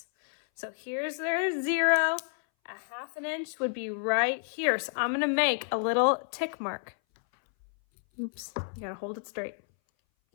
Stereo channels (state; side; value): silent; right; 58 dB below the other